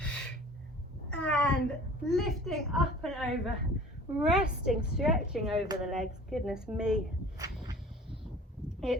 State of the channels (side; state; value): both; normal; correlation 0.46